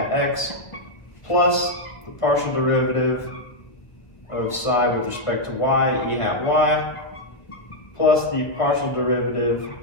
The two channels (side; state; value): right; late; 1.4 ms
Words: x, plus the partial derivative of psi with respect to y, e hat y, plus the partial derivative